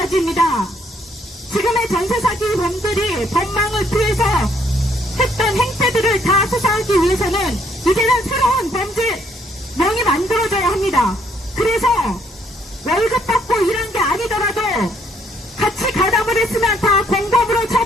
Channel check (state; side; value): normal; both; correlation 0.68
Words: 지금의 전세사기범들이 법망을 피해서 했던 행태들을 다 수사하기 위해서는 이제는 새로운 범죄명이 만들어져야 합니다. 그래서 월급 받고 일한 게 아니더라도 같이 가담을 했으면 다 공범으로